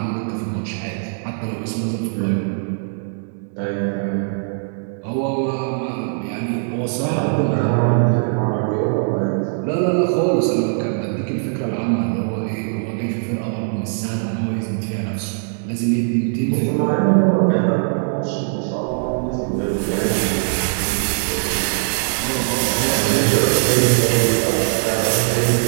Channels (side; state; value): left; silent; digital silence